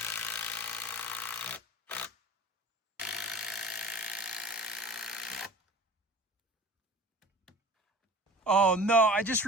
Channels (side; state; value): both; normal; correlation 0.41